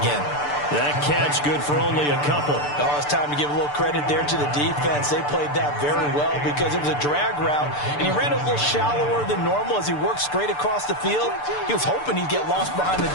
That catch good for only a couple. Oh, it's time to give a little credit there to the defense. They played that very well because it was a drag route, and he ran a little shallower than normal as he worked straight across the field. He was hoping he'd get lost behind the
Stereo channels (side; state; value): right; late; 6.8 ms